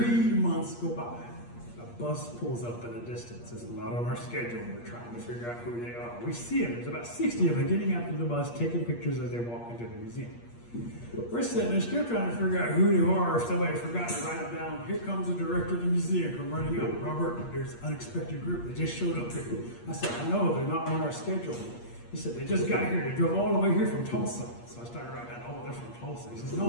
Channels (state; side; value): late; right; 8.5 ms